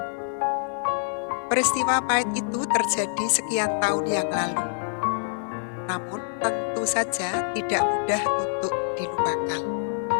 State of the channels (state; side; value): silent; right; digital silence